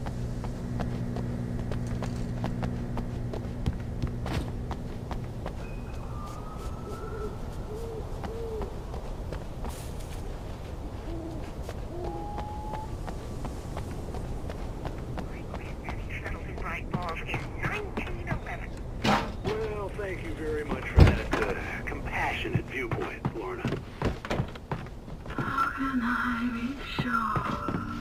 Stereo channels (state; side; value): identical; both; correlation 1.00